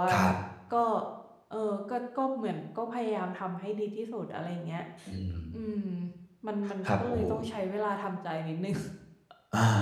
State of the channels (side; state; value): both; identical; correlation 1.00